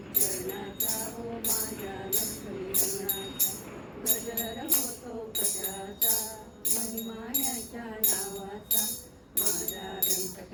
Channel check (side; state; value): both; identical; correlation 1.00